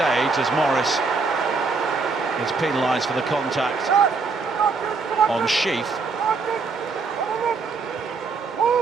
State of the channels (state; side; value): quieter; left; 4.4 dB